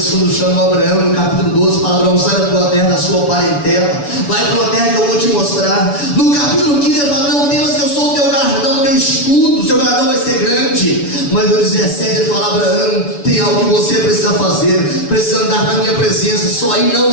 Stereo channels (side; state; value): right; late; 7.0 ms